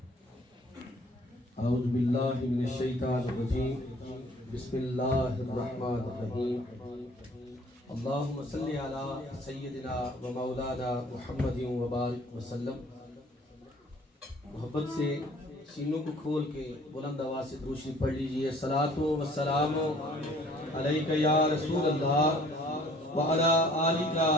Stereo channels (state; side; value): normal; both; correlation 0.55